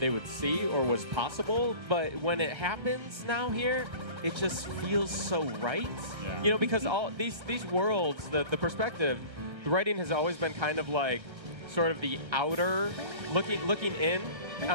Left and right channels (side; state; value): left; late; 1.4 ms